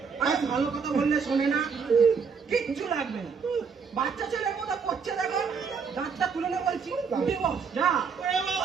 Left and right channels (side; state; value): left; quieter; 5.9 dB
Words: আরে ভালো কথা বললে শোনে না কিচ্ছু লাগবে না বাচ্চা ছেলের মতো করছে দেখো দাঁতটা তুলে নে বলছি উঠে বস যা ওরে